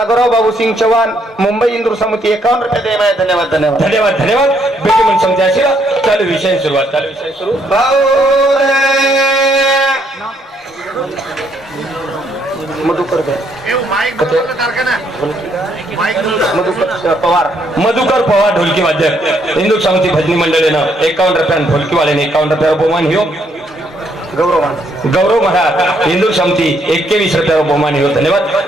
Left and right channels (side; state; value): both; normal; correlation 0.71